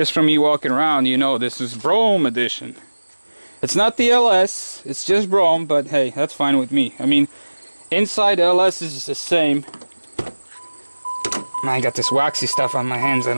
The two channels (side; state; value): both; inverted; correlation -1.00